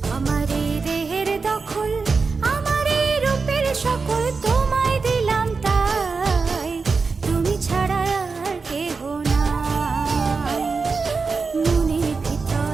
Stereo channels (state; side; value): quieter; left; 4.6 dB